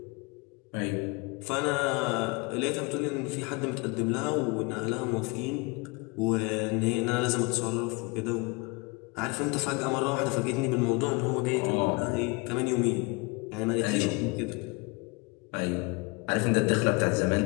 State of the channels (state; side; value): quieter; right; 28.1 dB